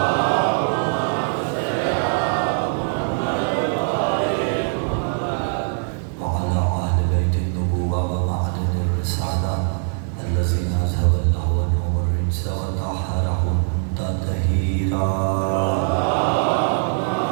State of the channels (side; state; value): left; silent; 64 dB below the other